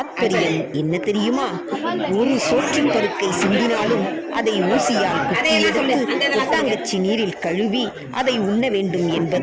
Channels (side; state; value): both; identical; correlation 1.00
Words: என்ன தெரியுமா? ஒரு சோற்றுப் பருக்கை சிந்தினாலும் அதை ஊசியால் குத்தியெடுத்து கொட்டாங்கச்சி நீரில் கழுவி அதை உண்ண வேண்டும்